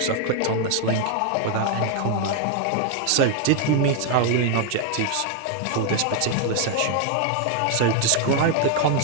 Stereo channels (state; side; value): different; both; correlation 0.00